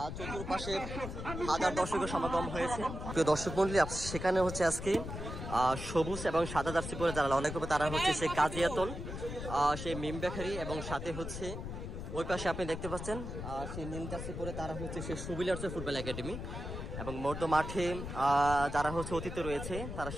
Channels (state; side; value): noise; left; rumble, 7 dB below the sound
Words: চতুর্পাশে হাজার দর্শকের সমাগম হয়েছে। প্রিয় দর্শক মন্ডলী, সেখানে হচ্ছে আজকে সবুজ এবং সাদা জার্সি পরে যারা লড়াই করবে তারা হচ্ছে সে কাজিয়াতুল সেই মিমবাখারি এবং সাথে হচ্ছে ওই পাশে আপনি দেখতে পাচ্ছেন সেই নীল জার্সি পরে তারা হচ্ছে সেই সুবিলিয়ার্স ফুটবল একাডেমি। এবং মধ্য মাঠে যারা হচ্ছে অতিথি রয়েছে তারা